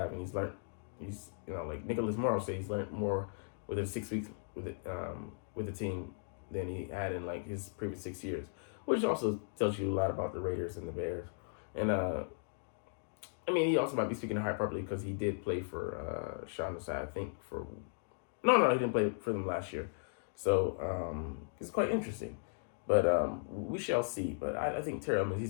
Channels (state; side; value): silent; right; digital silence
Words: and he's learned. He's like Nicholas Morrow said, he's learned more within 6 weeks with the team than he had in like his previous 6 years, which also tells you a lot about the Raiders and the Bears. And he also might be speaking to hyperbole because he did play for Sean Desai, I think he didn't play for them last year. So it's quite interesting. But we shall see. But I think Terrell, I mean,